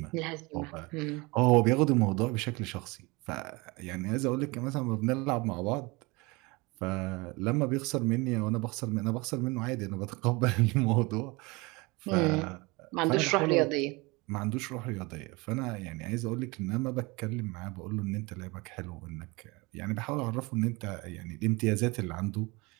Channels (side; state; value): left; quieter; 25.2 dB